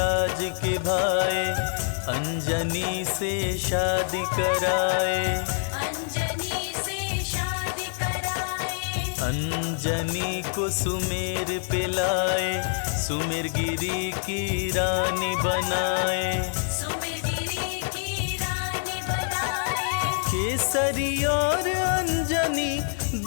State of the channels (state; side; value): silent; right; 61 dB below the other